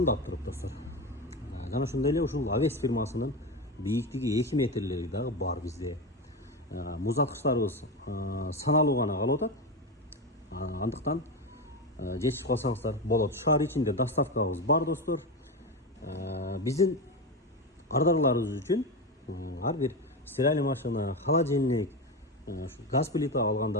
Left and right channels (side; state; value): both; normal; correlation 0.18